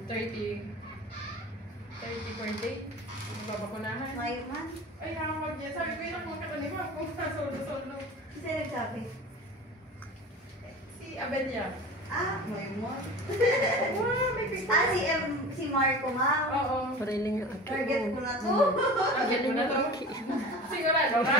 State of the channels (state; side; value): normal; both; correlation 0.36